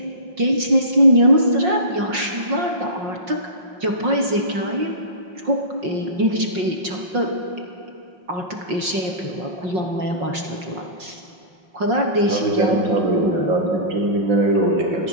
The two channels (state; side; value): late; left; 5.6 ms